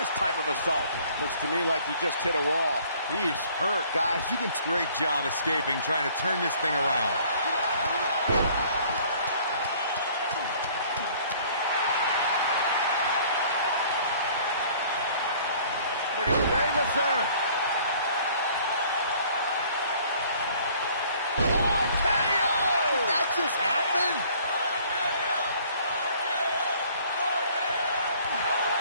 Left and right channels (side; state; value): both; inverted; correlation -0.56